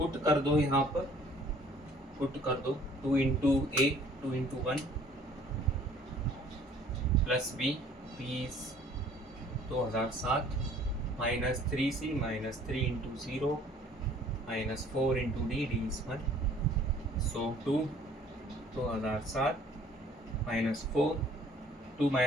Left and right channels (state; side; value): normal; both; correlation 0.55